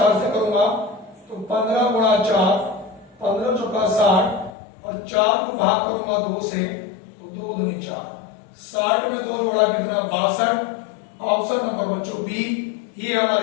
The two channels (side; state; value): right; drops out; at 4.5 s